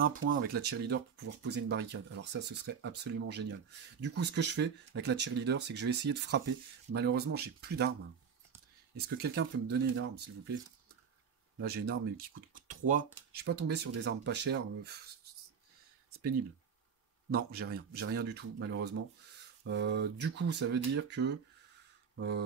point avec la cheerleader pour pouvoir poser une barricade. Alors ça, ce serait absolument génial. Du coup, ce que je fais avec la cheerleader, c'est que je vais essayer de frapper. Malheureusement, j'ai plus d'armes. Est-ce que quelqu'un peut me donner une arme, s'il vous plaît? Là, j'ai une arme qui coûte 3. Je suis pas tombé sur des armes pas chères. C'est pénible. Non, j'ai rien. J'ai rien du tout, malheureusement. Du coup, ça veut dire que...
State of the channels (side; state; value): left; quieter; 6.8 dB